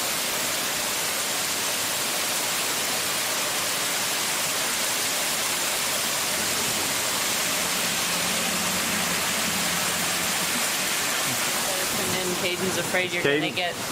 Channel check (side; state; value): both; identical; correlation 1.00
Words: And then Caden's afraid you're Caden- gonna get